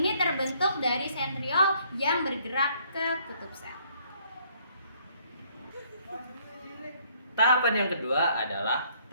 terbentuk dari sentriol yang bergerak ke kutub sel. Tahapan yang kedua adalah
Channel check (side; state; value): both; inverted; correlation -0.65